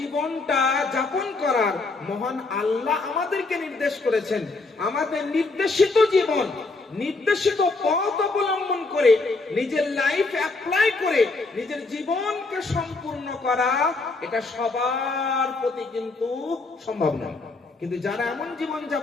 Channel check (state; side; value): quieter; right; 3.6 dB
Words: যাপন করার মহান আল্লাহ আমাদেরকে নির্দেশ করেছেন, আমাদের নির্দেশিত জীবন, নির্দেশিত পথ অবলম্বন করে নিজের লাইফ অ্যাপ্লাই করে নিজের জীবনকে সম্পূর্ণ করা, এটা সবার প্রতি কিন্তু সম্ভব নয়। কিন্তু যারা এমন জীবন